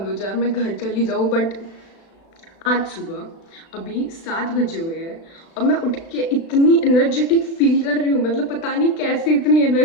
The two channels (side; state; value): right; late; 36 ms